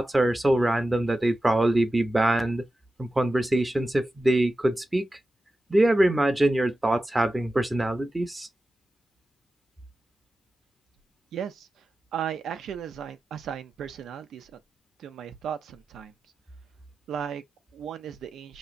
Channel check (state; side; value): normal; both; correlation 0.93